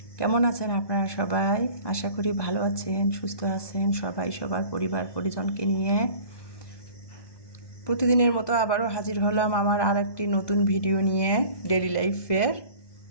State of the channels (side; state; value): right; late; 1.2 ms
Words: কেমন আছেন আপনারা সবাই? আশা করি ভালো আছেন, সুস্থ আছেন সবাই সবার পরিবার পরিজনকে নিয়ে। প্রতিদিনের মতো আবারও হাজির হলাম আমার আর একটি নতুন ভিডিও নিয়ে, ডেইলি লাইফের।